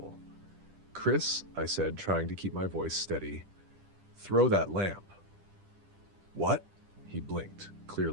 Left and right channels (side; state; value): left; late; 10 ms